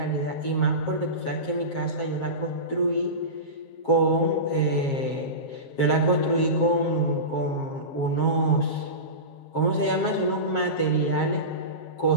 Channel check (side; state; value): right; late; 7.3 ms